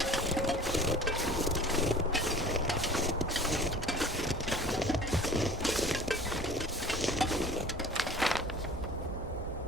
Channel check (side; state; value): both; normal; correlation 0.44